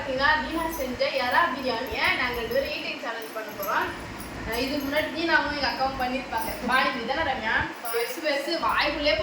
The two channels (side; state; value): both; identical; correlation 1.00